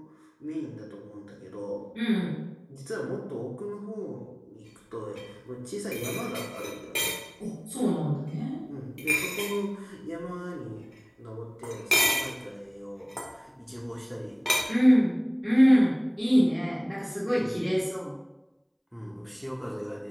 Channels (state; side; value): identical; both; correlation 1.00